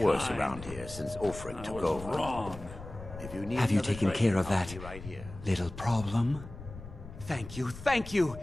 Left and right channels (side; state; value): left; noise; rumble, 13 dB below the sound